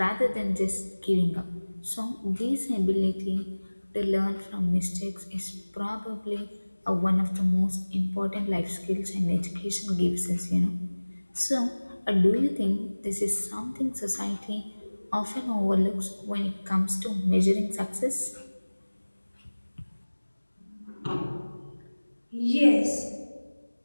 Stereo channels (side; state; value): both; inverted; correlation -1.00